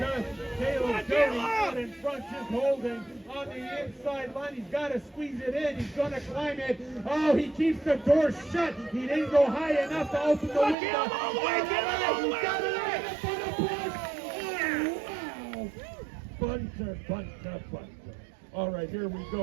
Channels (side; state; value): left; drops out; at 10.8 s